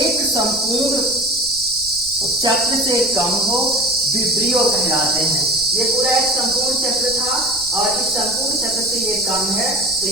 संपूर्ण चक्र से कम हो, विब्रियो कहलाते हैं। ये पूरा एक संपूर्ण चक्र था और इस संपूर्ण चक्र से ये कम है, तो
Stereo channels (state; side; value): noise; right; rumble, 20 dB below the sound